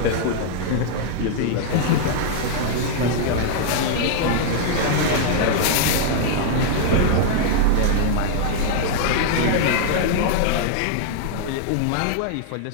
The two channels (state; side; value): different; both; correlation -0.01